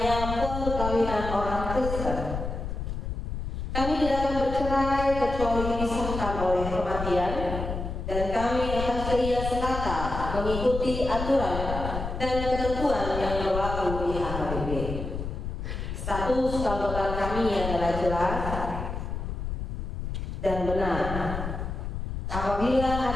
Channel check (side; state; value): left; noise; rumble, 5 dB below the sound